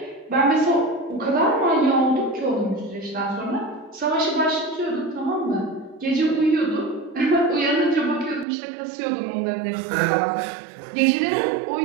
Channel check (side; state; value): left; drops out; at 8.5 s